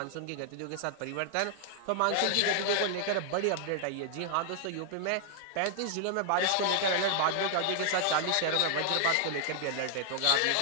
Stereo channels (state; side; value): different; both; correlation -0.01